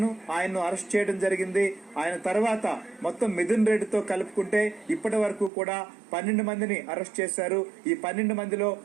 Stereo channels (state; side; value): drops out; left; at 5.5 s